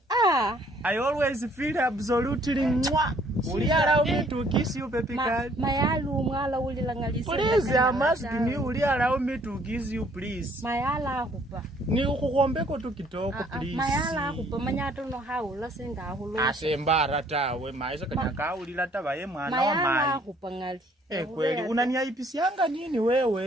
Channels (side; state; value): both; normal; correlation 0.62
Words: I always feel absolutely mwa. Will you allow me to kiss you, baby girl? Mayalu mwala ulilangalisa. Please, I must me. Will you allow me to kiss you, please? Mayala hupa. Ni ukukombeko tu kitoko, please. Mayala hupa manyato no haula senga hulo. Asembara tawe maisha kanyaka ulila tabaye mwana wa mai. Mayala hupa ngali. Kweli unaniaipisianga nini